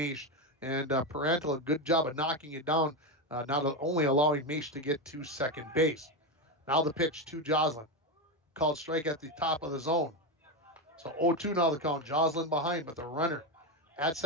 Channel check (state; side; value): normal; both; correlation 0.12